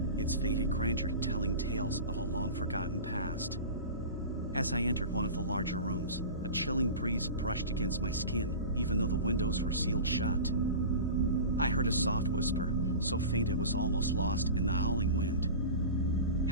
its faded grandeur telling tales of a long-forgotten past. As I entered one of the larger rooms, a chilling breeze brushed against my skin, even though the windows were sealed shut. I heard a soft whisper, so faint it was almost lost in the howling wind.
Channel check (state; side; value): inverted; both; correlation -0.32